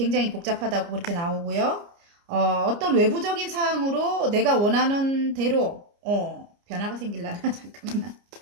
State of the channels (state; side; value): late; left; 29 ms